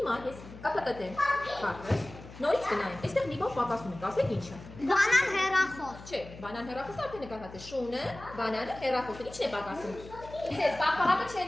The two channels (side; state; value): left; noise; hum, 16 dB below the sound